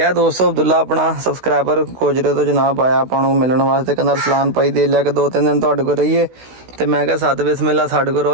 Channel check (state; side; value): late; left; 16 ms